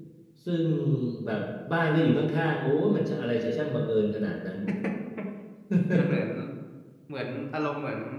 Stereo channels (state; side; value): identical; both; correlation 1.00